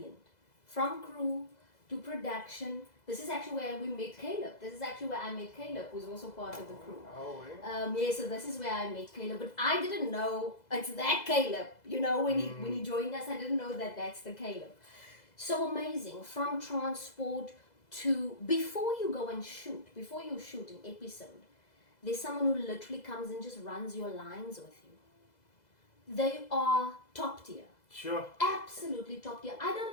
From crew to production. This is actually where we met Caleb. This is actually where I met Caleb, who's also part of the crew. Oh, yeah. Yeah, so this is where I met Caleb. But I didn't know it's that Caleb. You know, when he joined us, I didn't know that that's the Caleb. So amazing. From transport to before you go and shoot, before you shoot an episode, there's someone who literally comes and just runs your lines with you. They are top tier. Sure. Absolutely top tier. I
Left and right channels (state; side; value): late; right; 2.0 ms